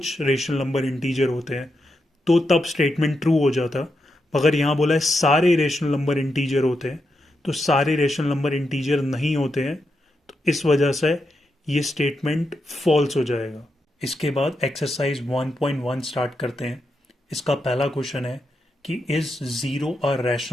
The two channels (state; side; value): normal; both; correlation 0.85